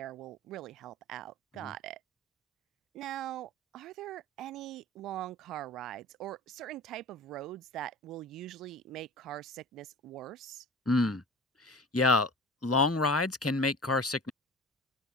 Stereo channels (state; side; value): normal; both; correlation 0.36